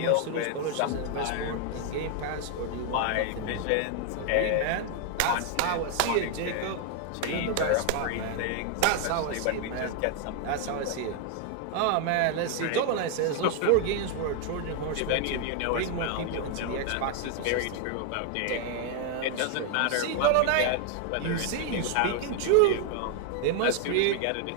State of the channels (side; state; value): both; different; correlation 0.00